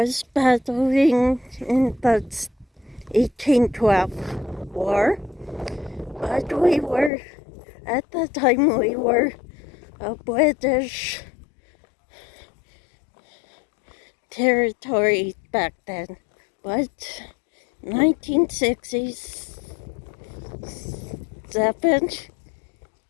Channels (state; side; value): drops out; right; at 7.1 s